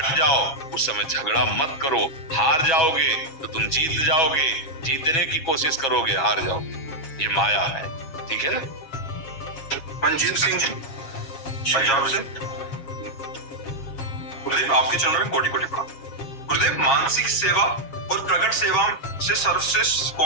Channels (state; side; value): late; right; 7.4 ms